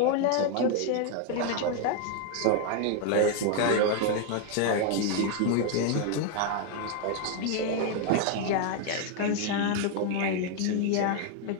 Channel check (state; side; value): different; both; correlation 0.01